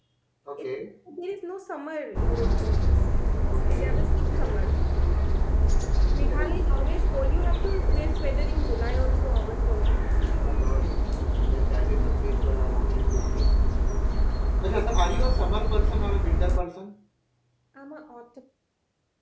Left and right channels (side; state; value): both; identical; correlation 1.00